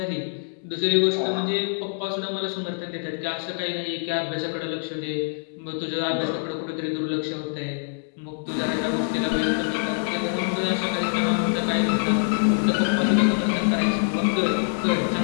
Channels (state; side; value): silent; right; 62 dB below the other